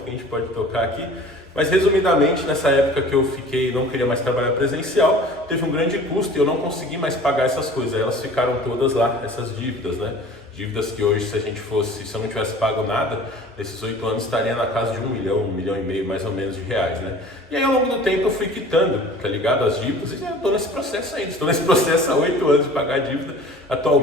que a gente pode tocar aqui, mas resumidamente, nessa época que eu não queria mais trabalhar presencial, teve um grande custo e eu não consegui mais pagar essas coisas, elas ficaram todas lá, essas dívidas, né? Dívidas que hoje, se eu não tivesse pago nada, nesses 8 anos estaria na casa de 1 milhão e meio mais ou menos de reais, né? E aí ao longo do tempo eu fui quitando, tá ligado, as dívidas, e eu tô nesse processo ainda, estou nesse processo há 8 anos de pagar a dívida.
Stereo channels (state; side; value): normal; both; correlation 0.44